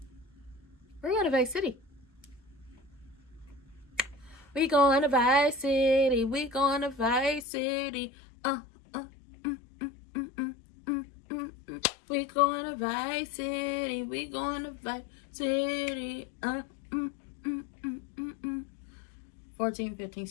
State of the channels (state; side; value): drops out; right; at 7.5 s